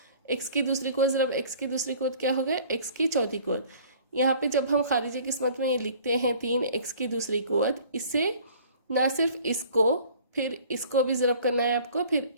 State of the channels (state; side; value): inverted; both; correlation -0.51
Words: एक्स की दूसरी कुव्वत ज़रब एक्स की दूसरी कुव्वत क्या हो गया, एक्स की चौथी कुव्वत। यहाँ पे जब हम खारिजी किस्मत में ये लिखते हैं 3 एक्स की दूसरी कुव्वत, इससे ना सिर्फ इसको, फिर इसको भी ज़रब करना है आपको, फिर